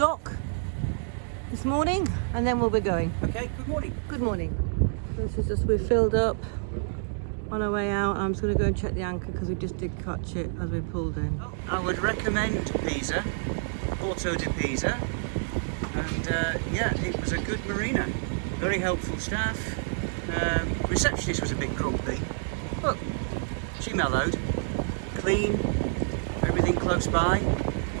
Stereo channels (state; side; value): silent; left; digital silence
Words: this morning, and then we'll be going. Okay, good morning. Good morning. This is just, we're filled up on our way out. I'm just going to go and check the anchor because we just did catch it as we pulled in. I would recommend Pisa, Porto de Pisa, and yeah, it was a good marina. Very helpful staff. Receptionist was a bit grumpy, but she mellowed. Clean, everything close by.